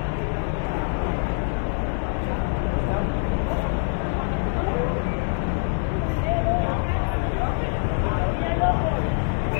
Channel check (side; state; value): right; silent; 57 dB below the other